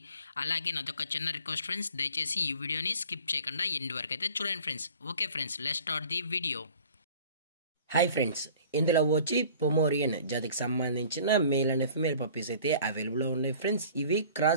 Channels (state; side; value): inverted; both; correlation -0.48